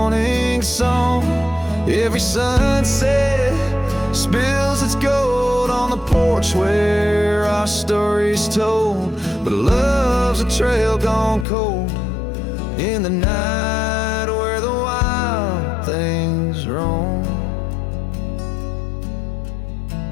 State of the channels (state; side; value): drops out; right; at 11.5 s